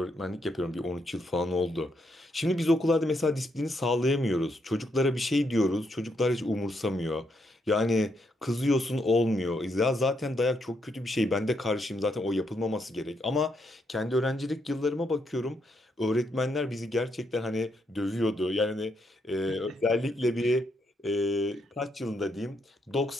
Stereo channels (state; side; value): normal; both; correlation 0.77